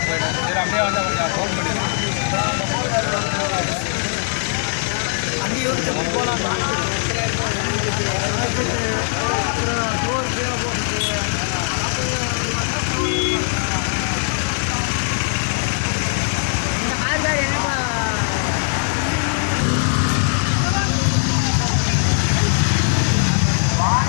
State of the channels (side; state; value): right; silent; 65 dB below the other